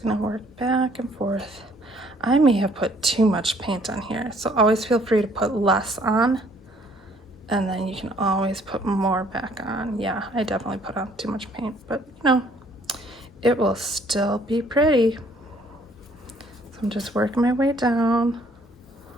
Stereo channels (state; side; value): normal; both; correlation 0.61